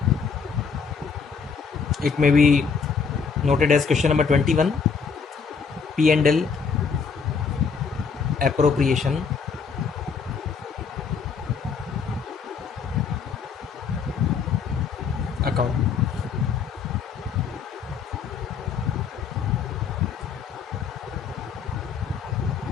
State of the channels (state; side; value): quieter; right; 5.8 dB